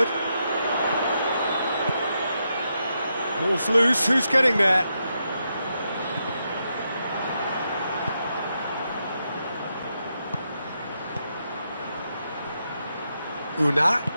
Ball's loose, who's getting there? Una.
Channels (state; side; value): inverted; both; correlation -0.83